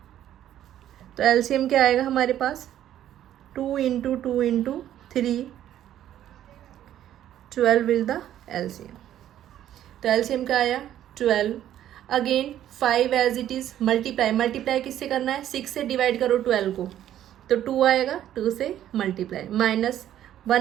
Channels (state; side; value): quieter; left; 11.6 dB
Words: तो एलसीएम क्या आएगा हमारे पास, 2 × 2 × 3, 12 इज द एलसीएम. तो एलसीएम क्या आया, 12. Again 5 as it is multiply किससे करना है, 6 से डिवाइड करो 12 को, तो 2 आएगा, 2 से मल्टीप्लाई.